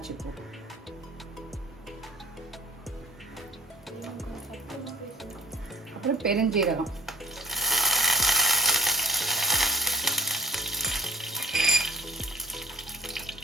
பூ, அப்புறம் பெருஞ்சீரகம்,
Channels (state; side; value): normal; both; correlation 0.53